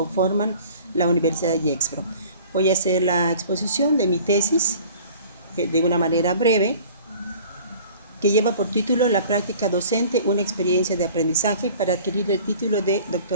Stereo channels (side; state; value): both; inverted; correlation -0.47